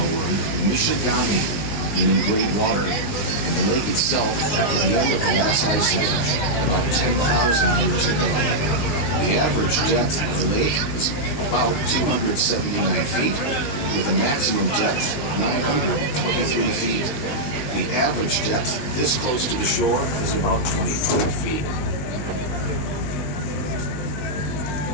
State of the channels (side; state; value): right; late; 19 ms